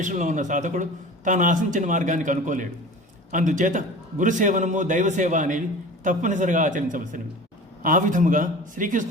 ఉన్న సాధకుడు తాను ఆశించిన మార్గానికి అనుకోలేడు. అందుచేత గురుసేవనము, దైవసేవ అనేవి తప్పనిసరిగా ఆచరించవలసినవి. ఆ విధముగా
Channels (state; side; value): normal; both; correlation 0.38